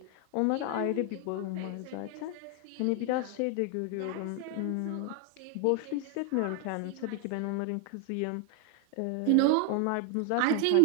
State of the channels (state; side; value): different; both; correlation 0.01